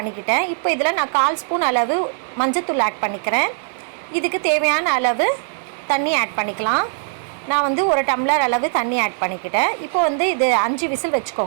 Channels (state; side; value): silent; left; digital silence